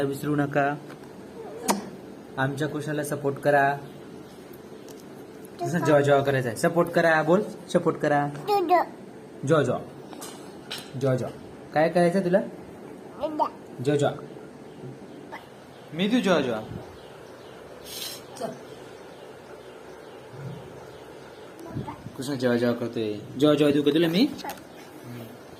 विसरू नका. आमच्या कृष्णाला सपोर्ट करा. जेव्हा जेव्हा करायचं आहे सपोर्ट करा. बोल, सपोर्ट करा. जॉ जॉ जॉ जॉ. काय करायचं तुला? जॉ जॉ. मी तू जॉ जॉ. कृष्णा जेव्हा जेव्हा करतोय. जेव्हा जेव्हा देऊ का तुला मी?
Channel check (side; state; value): both; identical; correlation 1.00